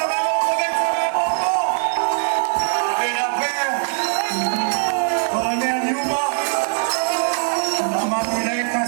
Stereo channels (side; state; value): left; silent; 65 dB below the other